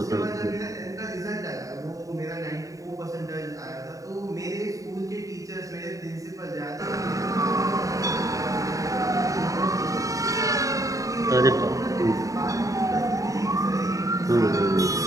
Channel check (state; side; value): late; left; 0.16 ms